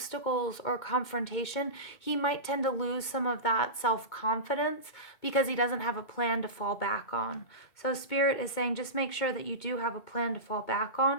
or confrontation, he might tend to lose some of that self-confidence because he doesn't have a plan to fall back on. So Spirit is saying just make sure that you do have a plan to fall back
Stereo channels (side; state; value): right; late; 2.2 ms